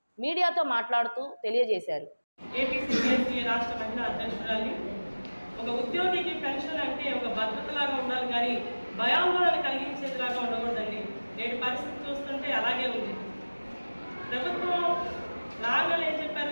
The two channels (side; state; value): both; inverted; correlation -1.00